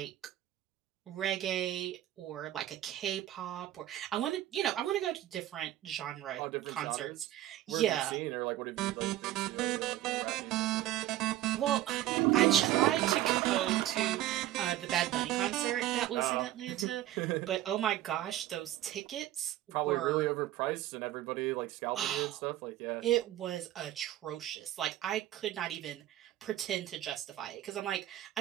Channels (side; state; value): left; quieter; 13.9 dB